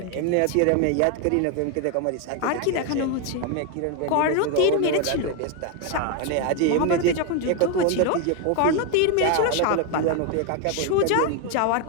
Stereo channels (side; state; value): both; different; correlation 0.01